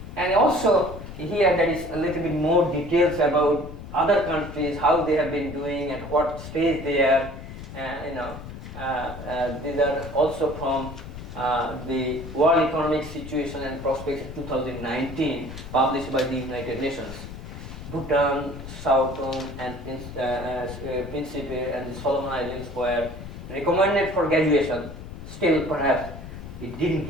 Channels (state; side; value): noise; left; rumble, 11 dB below the sound